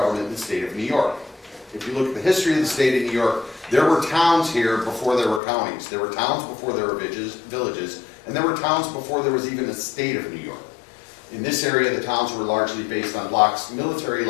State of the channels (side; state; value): right; drops out; at 5.4 s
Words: in the state of New York. If you look at the history of the state of New York, there were towns here before there were counties. There were towns before there were villages, and there were towns before there was even a state of New York. In this area, the towns were largely based on blocks, military